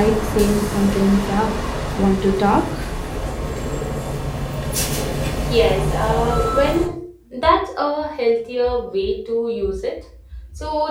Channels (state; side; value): identical; both; correlation 1.00